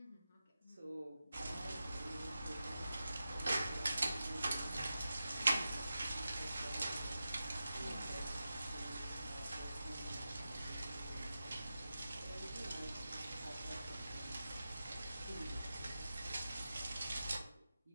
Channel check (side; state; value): both; inverted; correlation -0.92